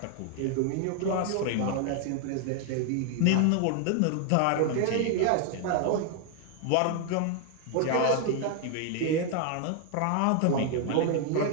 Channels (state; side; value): different; both; correlation 0.01